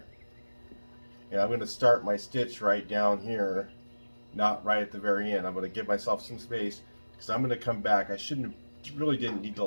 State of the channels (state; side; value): inverted; both; correlation -1.00